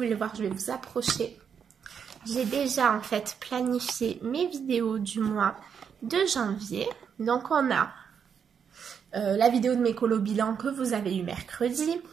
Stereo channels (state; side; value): quieter; left; 7.2 dB